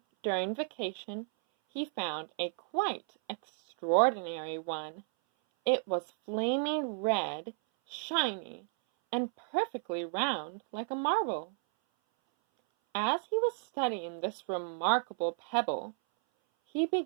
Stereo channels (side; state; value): left; silent; 56 dB below the other